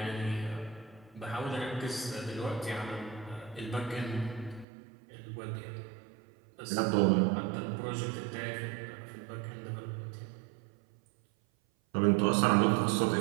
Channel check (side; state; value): left; drops out; at 4.7 s